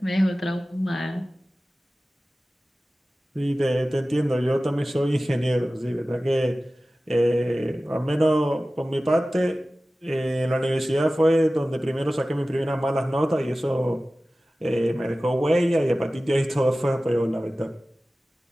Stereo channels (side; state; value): both; normal; correlation 0.96